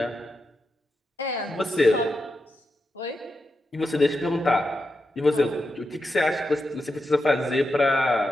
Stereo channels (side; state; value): both; normal; correlation 0.87